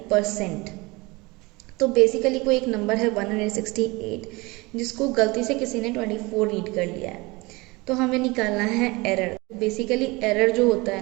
percent. तो बेसिकली कोई एक नंबर है 168 जिसको गलती से किसी ने 24 रीड कर लिया है, तो हमें निकालना है एरर। बेसिकली एरर जो होता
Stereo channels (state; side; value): quieter; left; 24.1 dB